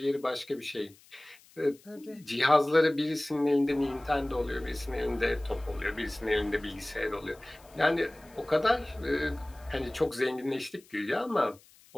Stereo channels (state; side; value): noise; left; hiss, 27 dB below the sound